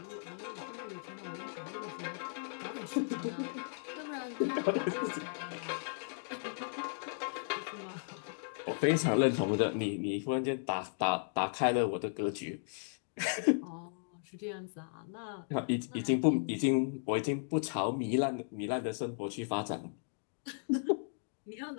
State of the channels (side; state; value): right; silent; digital silence